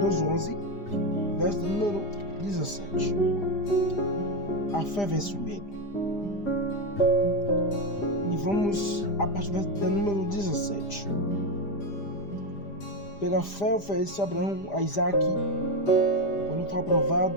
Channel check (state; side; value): late; right; 5.0 ms